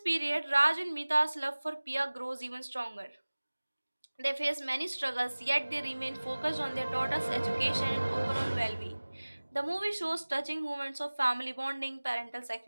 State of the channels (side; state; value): both; inverted; correlation -1.00